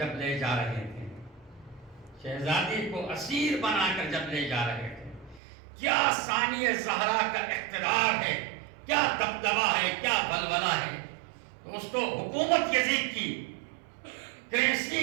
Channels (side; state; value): left; drops out; at 5.4 s